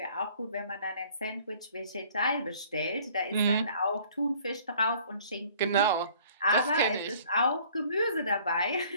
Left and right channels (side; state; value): both; inverted; correlation -0.55